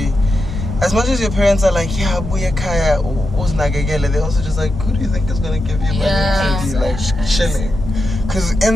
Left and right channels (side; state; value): both; normal; correlation 0.88